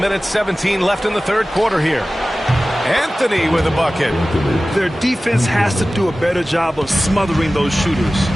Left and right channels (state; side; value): normal; both; correlation 0.96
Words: 17 left in the third quarter here. Anthony with a bucket. Their defense has to do a better job of smothering those shooters.